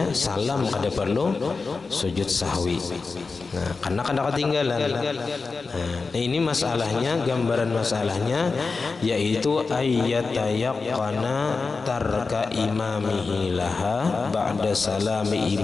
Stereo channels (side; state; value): right; quieter; 4.3 dB